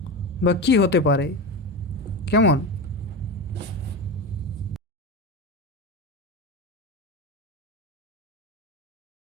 বা কি হতে পারে। কেমন?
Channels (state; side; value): normal; both; correlation 0.21